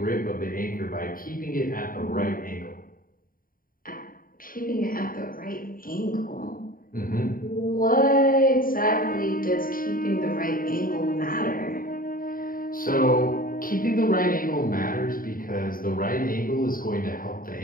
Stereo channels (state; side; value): late; right; 0.41 ms